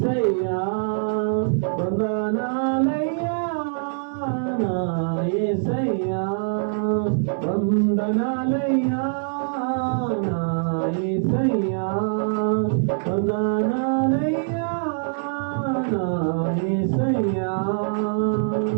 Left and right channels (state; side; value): silent; left; digital silence